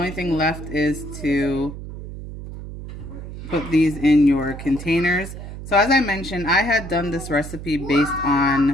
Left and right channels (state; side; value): noise; right; hum, 10 dB below the sound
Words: thing left is to put these in your containers. So as I mentioned, I had done this recipe based